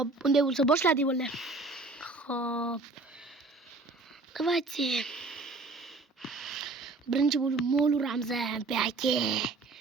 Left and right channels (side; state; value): left; quieter; 3.4 dB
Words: unday bo'lsa boshladik bolalar. Xo'p. Давайте. Birinchi bo'lib mol uramiz. Baki.